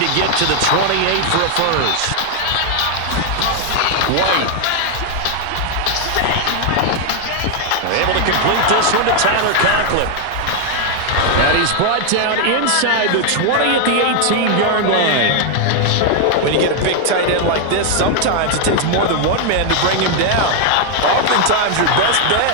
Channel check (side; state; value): both; different; correlation 0.00